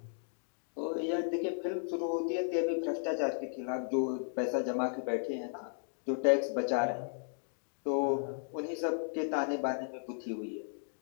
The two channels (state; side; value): silent; right; digital silence